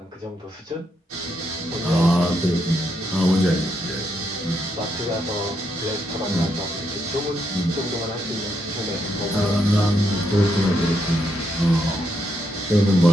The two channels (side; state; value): both; normal; correlation 0.78